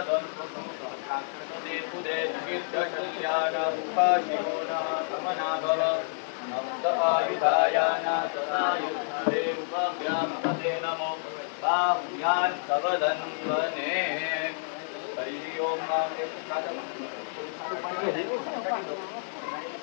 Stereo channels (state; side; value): silent; right; digital silence